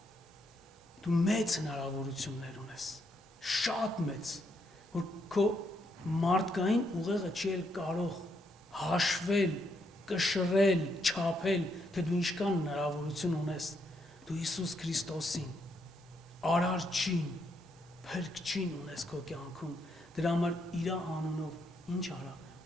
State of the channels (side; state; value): both; normal; correlation 0.77